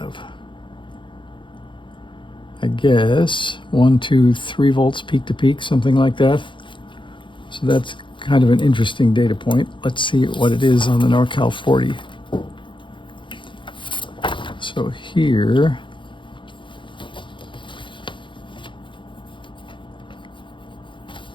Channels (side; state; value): right; late; 0.24 ms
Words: I guess 1, 2, 3 volts peak to peak, something like that. So that's kind of an interesting data point. Let's see what it is on the NorCal 40. So here,